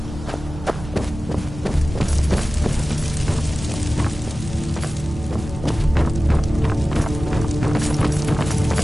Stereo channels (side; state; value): both; normal; correlation 0.96